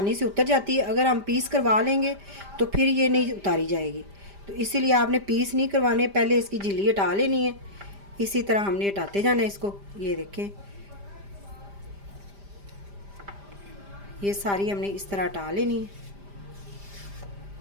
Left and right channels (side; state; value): left; late; 5.0 ms